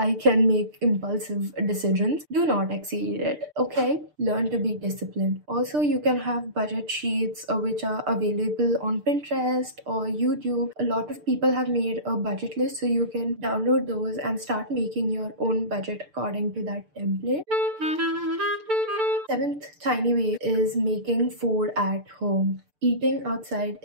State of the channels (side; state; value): left; late; 6.7 ms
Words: can make impulsive decisions. Do not exceed it, okay? Learn to be disciplined. Also, you can have budget sheets which are available on Pinterest or YouTube. A lot of people have made a budget list, so you can download those and start making your own budget according to that template. Seventh tiny way is making food at home. Eating outside